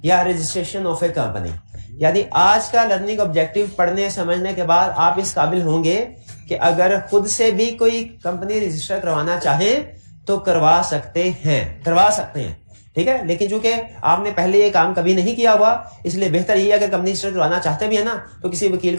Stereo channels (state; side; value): inverted; both; correlation -1.00